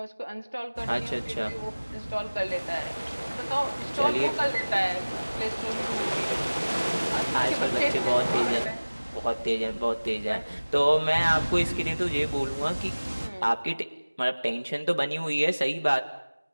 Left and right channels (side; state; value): both; inverted; correlation -1.00